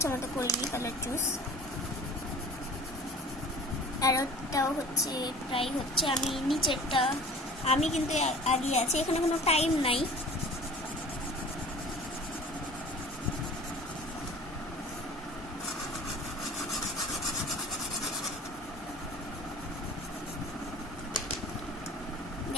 মতো করিনি কালার চুজ। আর ওটাও হচ্ছে প্রায় হচ্ছে আমি নিচেরটা আমি কিন্তু আগে আছি, এখানে কোনো টাইম নাই।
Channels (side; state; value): both; normal; correlation 0.43